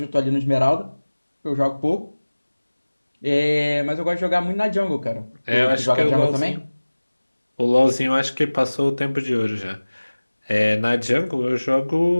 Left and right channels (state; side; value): inverted; both; correlation -1.00